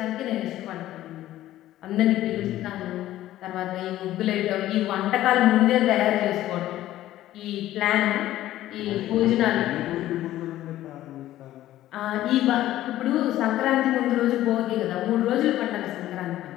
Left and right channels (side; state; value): right; quieter; 14.1 dB